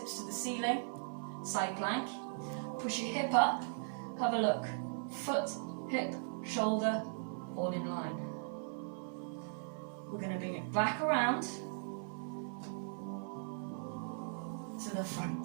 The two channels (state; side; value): silent; left; 52 dB below the other